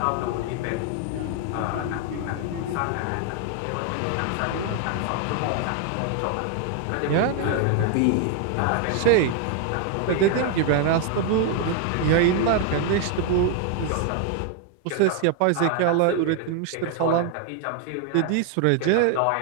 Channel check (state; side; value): different; both; correlation 0.01